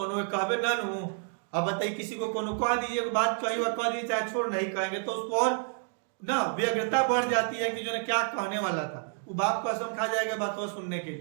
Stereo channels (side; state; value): left; silent; 56 dB below the other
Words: कहबे ना नू, अब बताइए किसी को कोनो कह दीजिए एगो बात कहियो, कह दीजिए चाहे छोड़ नहीं कहेंगे तो उसको और ना व्यग्रता बढ़ जाती है कि जो ना क्या कहने वाला था। वो बाप कसम खा जाएगा बात सुनने के